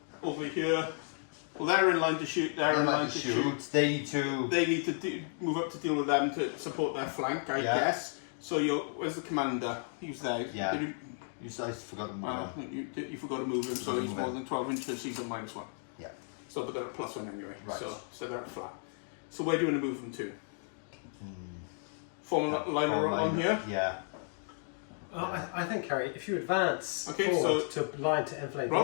Over here. Well, they're in line to shoot. They're in line to shoot. They need to. They need to move up to deal with them to support their flank, I Yeah. guess. So where's the commander? He's there. Yeah. Did you, I forgot to move well, on. you forgot to move him, so Move he's him. more than 12 inches. He's a -1. Yeah. So, but they're at +1 anyway. Right. So they're at flat. So where do you want to move them to? Form a line on here. Yeah. I think, Kerry, if you advance Okay, forward to line to inflate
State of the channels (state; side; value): silent; right; 55 dB below the other